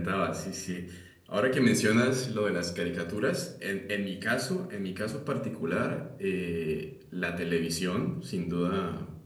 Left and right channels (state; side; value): identical; both; correlation 1.00